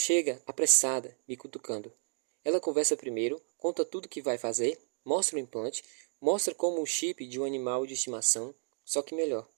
apressada, me cutucando. Ela conversa primeiro, conta tudo que vai fazer, mostra o implante, mostra como o chip de um animal de estimação, só que melhor.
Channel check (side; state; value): left; silent; 56 dB below the other